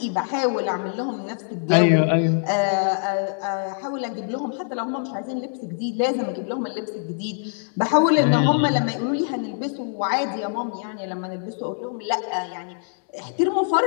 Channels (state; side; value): silent; right; digital silence